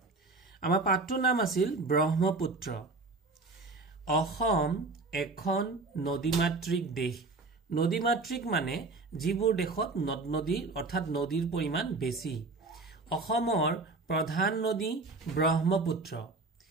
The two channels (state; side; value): quieter; left; 3.6 dB